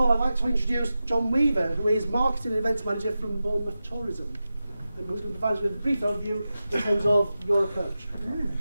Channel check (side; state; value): both; inverted; correlation -0.93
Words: I'd like to introduce Jon Weaver, who is Marketing and Events Manager from Bournemouth Tourism, and who's going to provide us with a brief overview in terms of your approach.